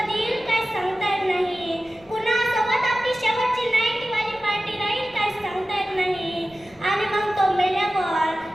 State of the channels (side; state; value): right; noise; rumble, 27 dB below the sound